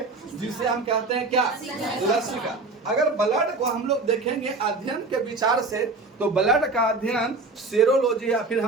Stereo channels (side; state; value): left; quieter; 3.5 dB